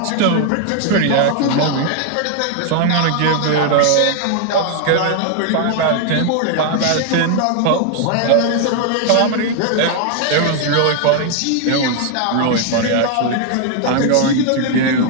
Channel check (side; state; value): both; different; correlation 0.00